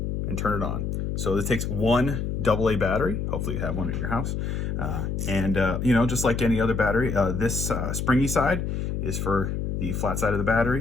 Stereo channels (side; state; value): left; noise; hum, 2 dB below the sound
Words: and turn it on. So this takes one AA battery. Hopefully you have one at your house. You know, just like any other battery, this springy side is for the flat side of the